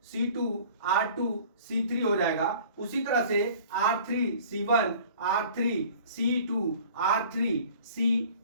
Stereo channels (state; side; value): inverted; both; correlation -0.48